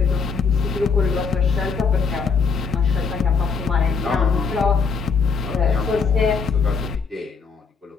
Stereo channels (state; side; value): quieter; right; 5.3 dB